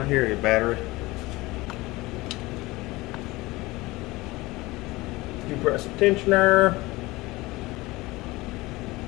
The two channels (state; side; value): quieter; right; 20.8 dB